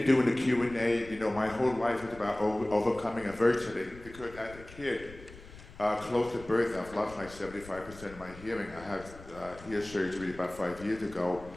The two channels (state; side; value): noise; left; rumble, 18 dB below the sound